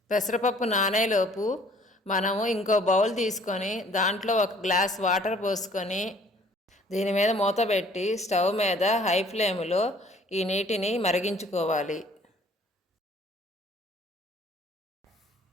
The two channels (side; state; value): both; normal; correlation 0.56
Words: పెసరపప్పు నానేలోపు మనము ఇంకో బౌల్ తీసుకొని దాంట్లో 1 గ్లాస్ వాటర్ పోసుకొని దీని మీద మూత పెట్టి స్టవ్ మీద హై ఫ్లేమ్లో ఈ నీటిని మరిగించుకోవాలి.